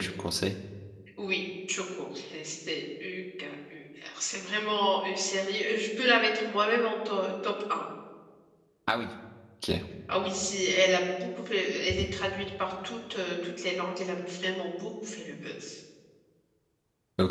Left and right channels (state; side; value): identical; both; correlation 1.00